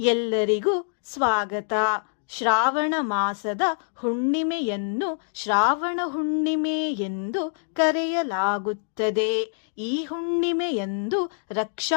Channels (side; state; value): right; silent; digital silence